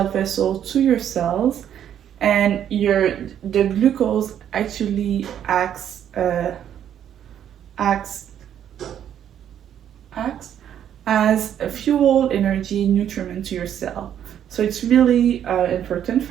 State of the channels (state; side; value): quieter; left; 9.8 dB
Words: vessel to your cells, and the glucose actually acts as a fuel, energy, nutriment to your cell. So it's really important